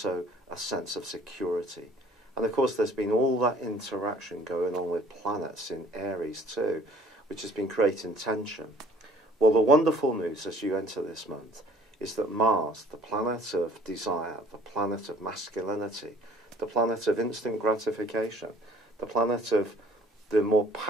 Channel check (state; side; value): normal; both; correlation 0.55